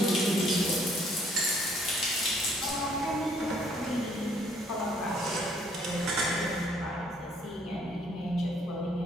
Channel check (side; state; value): both; normal; correlation 0.63